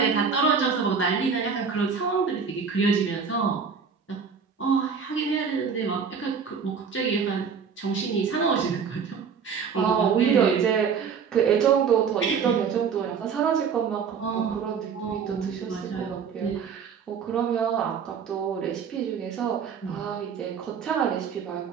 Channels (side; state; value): left; quieter; 6.3 dB